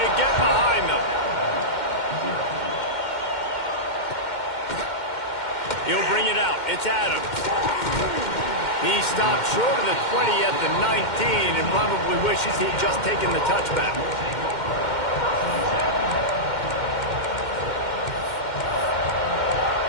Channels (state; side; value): late; right; 2.1 ms